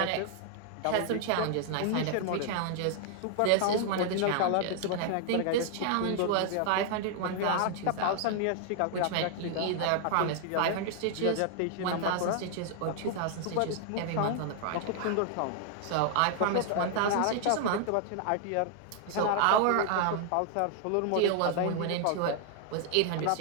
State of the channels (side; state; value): both; different; correlation 0.00